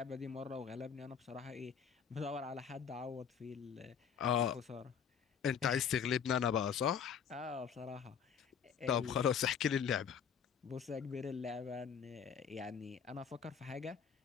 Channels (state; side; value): quieter; right; 7.3 dB